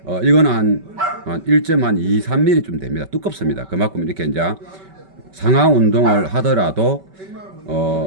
이거는 한 1.23mm 좀 됩니다. 두껍습니다. 그만큼 이렇게 이제 상하 운동을 하더라도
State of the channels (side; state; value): left; late; 5.2 ms